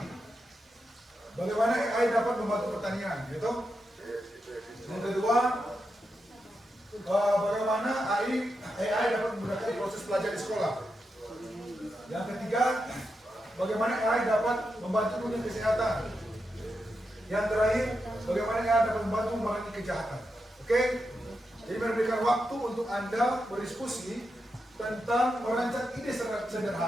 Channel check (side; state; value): both; normal; correlation 0.87